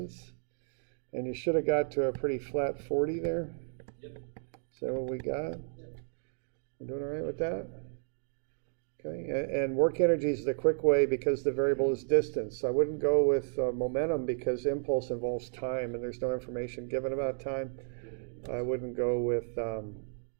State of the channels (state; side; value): silent; left; digital silence